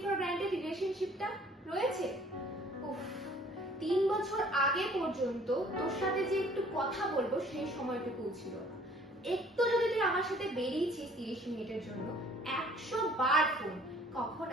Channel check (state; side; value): normal; both; correlation 0.56